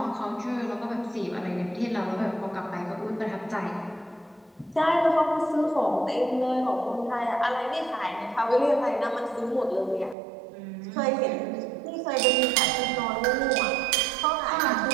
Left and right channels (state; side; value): drops out; left; at 10.2 s